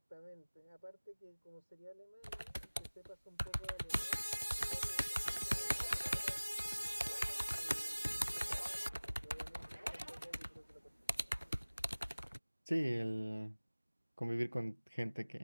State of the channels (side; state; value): both; inverted; correlation -1.00